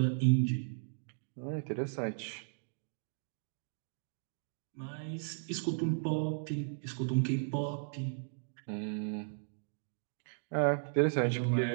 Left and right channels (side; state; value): left; silent; digital silence